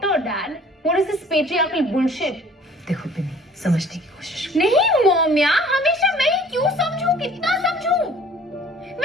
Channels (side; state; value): both; normal; correlation 0.52